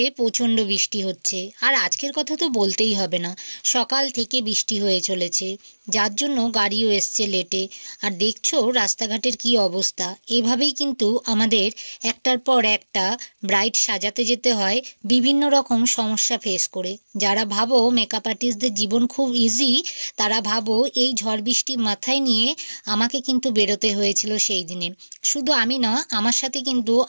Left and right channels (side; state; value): both; inverted; correlation -1.00